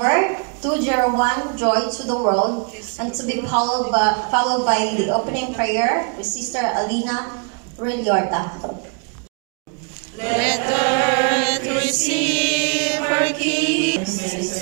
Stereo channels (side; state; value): left; quieter; 37.8 dB